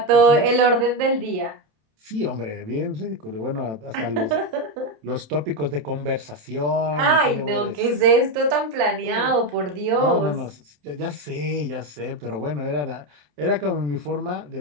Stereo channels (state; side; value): late; left; 27 ms